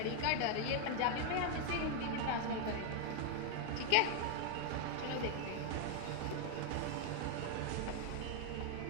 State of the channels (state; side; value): different; both; correlation 0.00